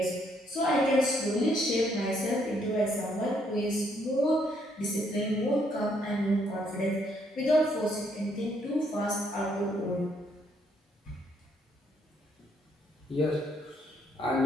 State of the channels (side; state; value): both; normal; correlation 0.71